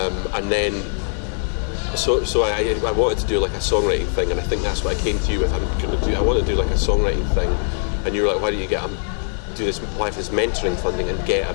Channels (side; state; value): right; silent; digital silence